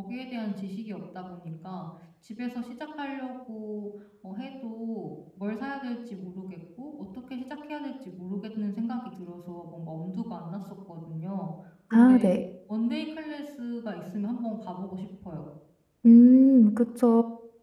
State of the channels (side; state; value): both; identical; correlation 1.00